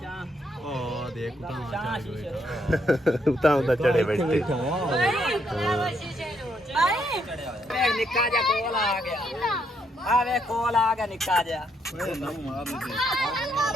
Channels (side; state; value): both; normal; correlation 0.74